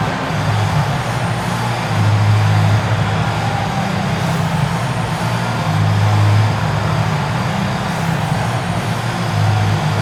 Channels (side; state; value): both; identical; correlation 1.00